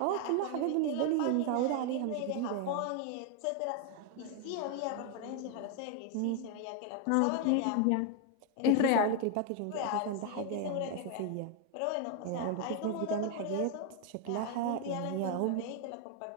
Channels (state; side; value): different; both; correlation 0.01